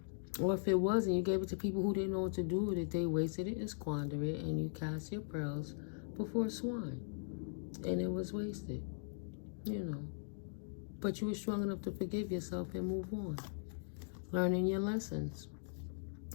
or if it wasn't, you gave it to people who didn't know what to do with it. They wasted it and squandered it, and you cast your pearls before swine. And it was wasted, you know. But you were strong enough to forgive yourself and move on. Learning your lessons.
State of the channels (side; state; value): right; silent; digital silence